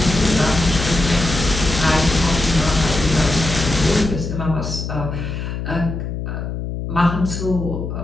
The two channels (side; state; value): left; noise; hum, 5 dB below the sound